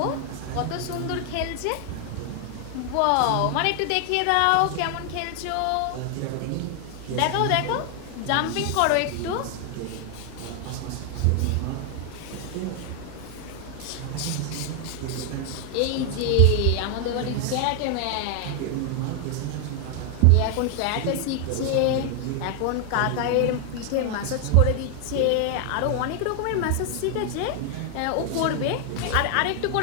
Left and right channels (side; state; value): both; different; correlation 0.00